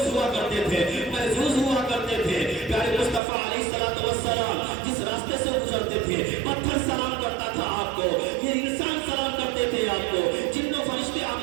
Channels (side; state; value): left; drops out; at 3.2 s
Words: ہوا کرتے تھے, محظوظ ہوا کرتے تھے. پیارے مصطفیٰ علیہ السلام جس راستے سے گزرتے تھے پتھر سلام کرتا تھا آپ کو, یہ انسان سلام کرتے تھے آپ کو, جن و فرشتے